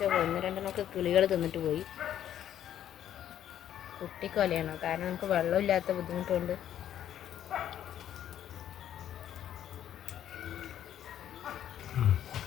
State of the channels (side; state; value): right; quieter; 10.7 dB